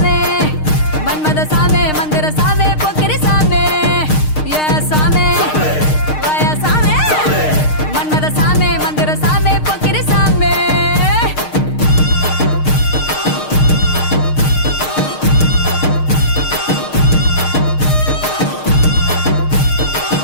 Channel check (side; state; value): right; late; 6.5 ms